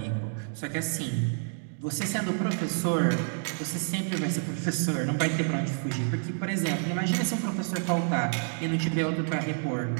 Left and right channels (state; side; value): silent; left; 59 dB below the other